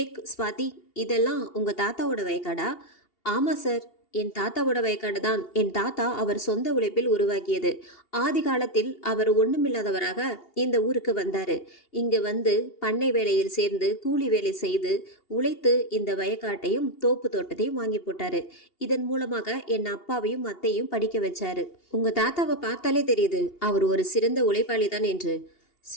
ஸ்வாதி, இதெல்லாம் உங்கள் தாத்தாவோட வயக்காடா? ஆமாம் சார், என் தாத்தாவோட வயக்காடு தான். என் தாத்தா அவர் சொந்த உழைப்பில் உருவாக்கியது. ஆதி காலத்தில் அவர் ஒண்ணுமில்லாதவராக இந்த ஊருக்கு வந்தாரு. இங்கு வந்து பண்ணை வேலையில் சேர்ந்து கூலி வேலை செய்து உழைத்து இந்த வயக்காட்டையும் தோப்பு தோட்டத்தையும் வாங்கி போட்டாரு. இதன் மூலமாக என் அப்பாவையும் அத்தையும் படிக்க வச்சாரு. உங்க தாத்தாவை பார்த்தாலே தெரியுது அவர் ஒரு சிறந்த உழைப்பாளி தான் என்று.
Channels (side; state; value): right; late; 2.8 ms